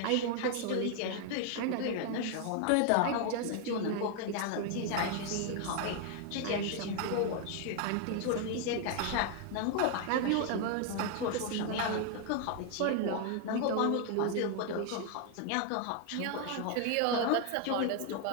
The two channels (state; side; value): different; both; correlation 0.00